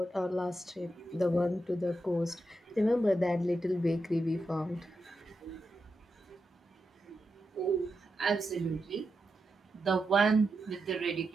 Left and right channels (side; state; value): both; normal; correlation 0.87